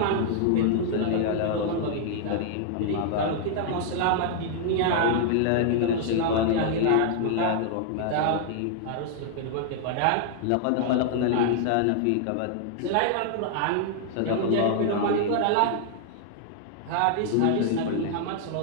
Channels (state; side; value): different; both; correlation -0.01